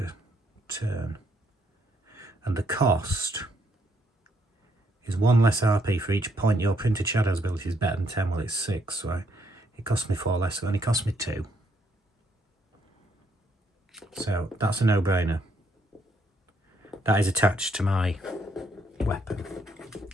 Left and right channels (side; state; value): both; normal; correlation 0.72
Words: turn. And the cost is 1 less RP for each point your printed shadows ability is better than 10. Well, it's 6, so it cost me 4 less, so it only cost me 2. So that's a no-brainer. That is attached to my weapon.